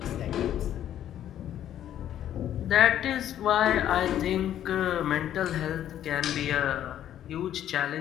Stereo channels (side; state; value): right; quieter; 11.1 dB